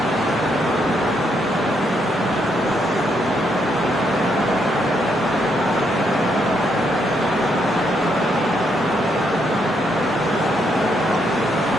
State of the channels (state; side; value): normal; both; correlation 0.76